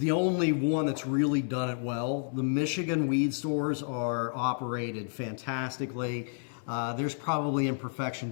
only one that's really done it well. The Michigan weed stores are operated fantastically. There's probably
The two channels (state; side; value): silent; right; digital silence